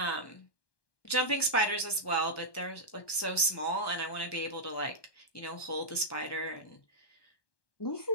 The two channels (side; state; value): right; late; 1.2 ms